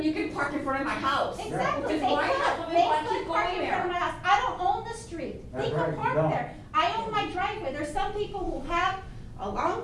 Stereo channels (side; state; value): both; identical; correlation 1.00